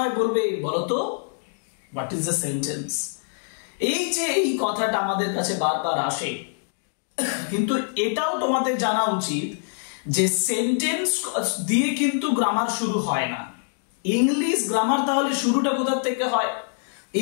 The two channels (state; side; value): silent; right; digital silence